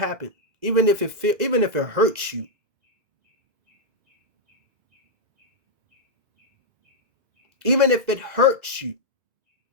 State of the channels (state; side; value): late; left; 2.0 ms